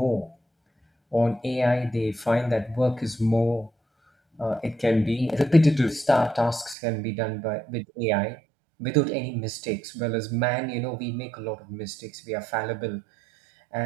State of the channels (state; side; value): drops out; left; at 6.8 s